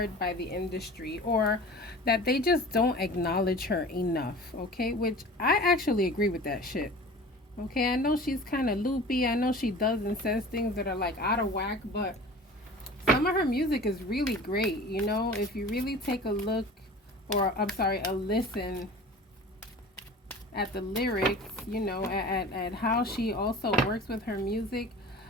by the industry, or that they just don't acknowledge her enough, okay? Which I actually agree with that shit. Okay, I know she's kind of loopy. I know she does and says things that are like out of whack, but some of her music is really great, you know? If you really take a look, or I'm sorry, a listen at the lyrics, you know, at how she also works with her music.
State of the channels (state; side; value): normal; both; correlation 0.40